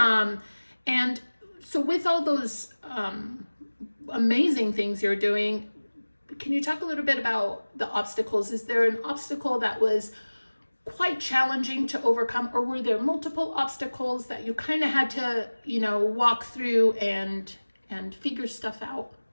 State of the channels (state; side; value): inverted; both; correlation -1.00